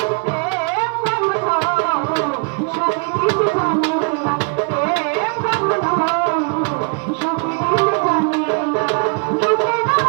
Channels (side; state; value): left; quieter; 35.4 dB